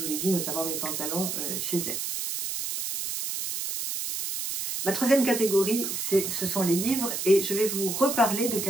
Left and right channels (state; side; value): noise; right; hiss, 3 dB below the sound